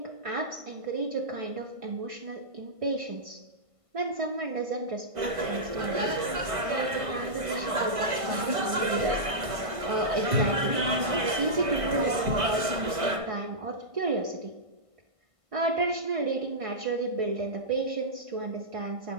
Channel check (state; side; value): late; left; 1.5 ms